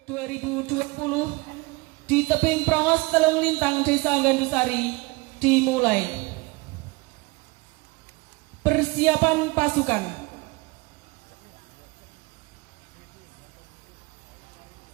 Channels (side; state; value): left; quieter; 25.0 dB